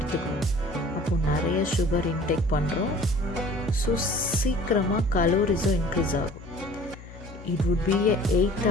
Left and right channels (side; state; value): left; noise; hum, 17 dB below the sound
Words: அப்போது நிறைய சுகர் இன்டேக் பண்ணுறோம். ஸோ சீக்கிரமாக கலோரிஸும் இன்க்ரீஸ் ஆகும். It would B